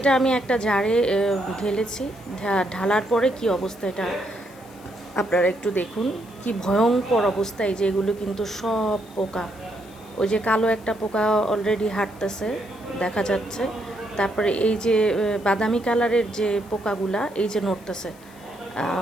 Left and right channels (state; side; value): noise; left; hiss, 26 dB below the sound